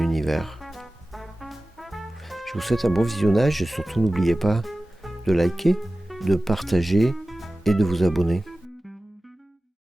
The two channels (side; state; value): both; normal; correlation 0.96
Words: Je vous souhaite un bon visionnage et surtout n'oubliez pas de liker, de partager et de vous abonner.